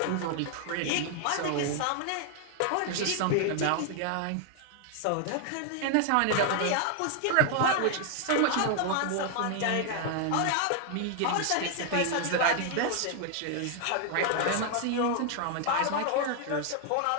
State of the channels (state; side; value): different; both; correlation 0.00